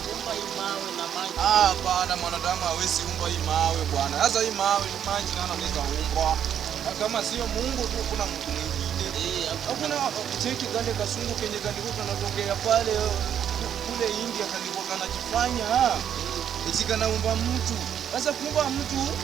kuumba hii mawe na maji. Bwana, mwanadamu hawezi umba hii mawe bwana. Sasa hii mawe ni maji nani anaweza umba? Kama sio Mungu tu kuna mtu mwingine. Hakuna cheki kale kasungu kenye kalikuwa kanatokea pale kule India kalikuwa kanajifanya eti kanaumba mtu. Sasa kuumba mtu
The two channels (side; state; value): left; quieter; 9.2 dB